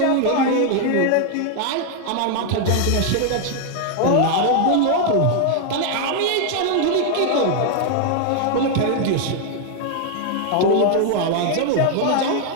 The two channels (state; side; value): different; both; correlation 0.00